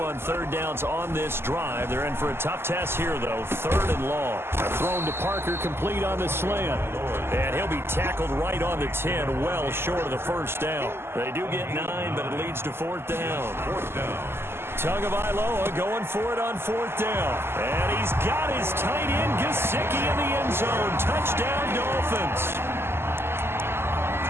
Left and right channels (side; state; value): left; late; 0.12 ms